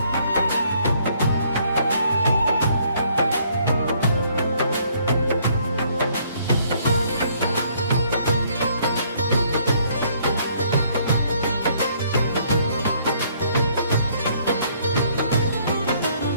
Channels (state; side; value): inverted; both; correlation -0.65